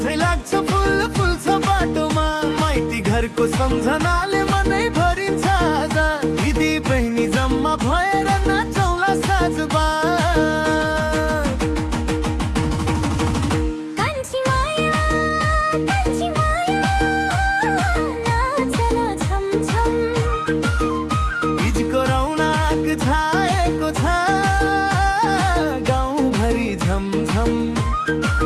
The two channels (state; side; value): identical; both; correlation 1.00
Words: चाहिँ लाग्छ फुल फुल्छ बाटोमा माइती घरको सम्झनाले मनै भरिन्छ आज दिदी बहिनी जम्मा भएर नाचौला साँझमा छाएको छ गाउँभरि झमझम